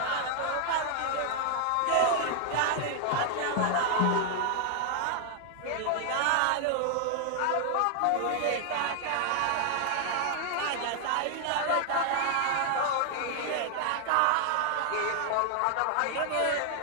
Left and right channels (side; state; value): both; different; correlation 0.00